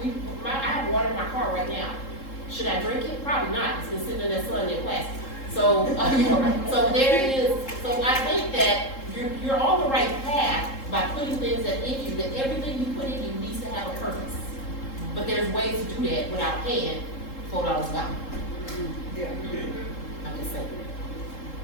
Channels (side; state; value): right; late; 3.7 ms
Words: I have water in my car right now. Should I drink it? Probably not. It's been sitting in that sun in plastic. So, so there it is. So I think that you're on the right path by putting things that in you, that everything you put in you needs to have a purpose. But there's ways to do that without paying $4 a gallon. Yeah. I'm just saying.